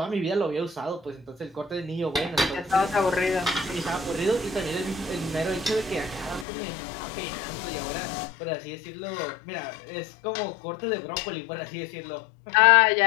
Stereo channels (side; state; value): right; drops out; at 6.5 s